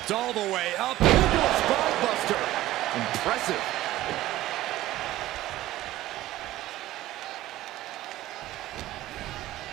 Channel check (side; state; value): left; quieter; 15.5 dB